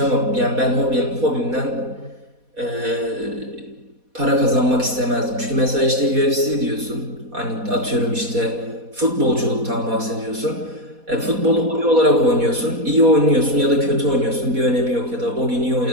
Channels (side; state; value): left; late; 4.1 ms